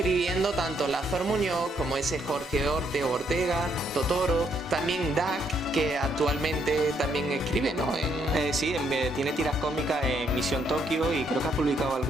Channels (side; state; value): both; normal; correlation 0.72